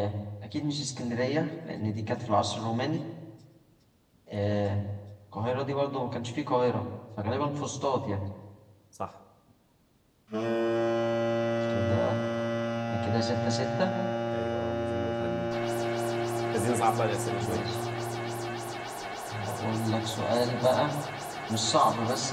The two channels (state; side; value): identical; both; correlation 1.00